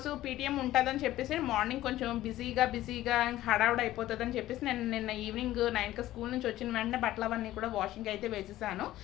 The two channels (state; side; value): quieter; right; 14.8 dB